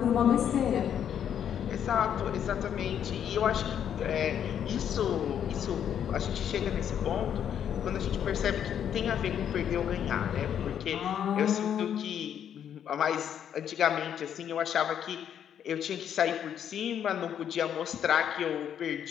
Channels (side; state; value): right; quieter; 9.1 dB